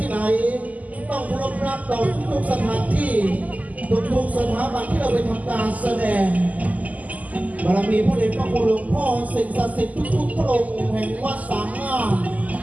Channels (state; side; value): late; left; 0.076 ms